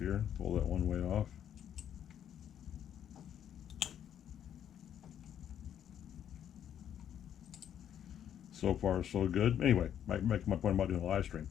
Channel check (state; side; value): quieter; right; 9.7 dB